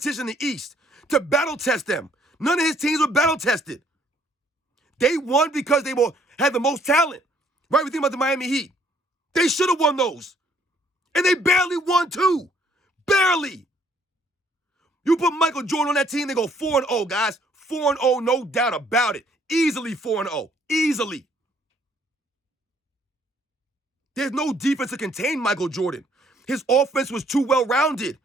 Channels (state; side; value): normal; both; correlation 0.64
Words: in the East to battle test them. None of his teams were battle tested. They won because they had the most talent. Right? We think about the Miami Heat. They should have won those. And they barely won too. Barely. You put Michael Jordan on that team, they go 4-0, guys. 4-0, no doubt about it. Easily 4-0. Easily. There's no defense to contain Michael Jordan. His offense was too well-rounded.